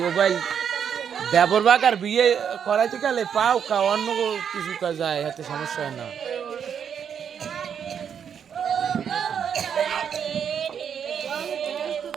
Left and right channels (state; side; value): quieter; left; 7.9 dB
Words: মোবাইল দেবর বাগার বিয়ে করাইতে গেলে পাও অন্য কিছু কাজ যায়, এতে সমস্যা হয় না।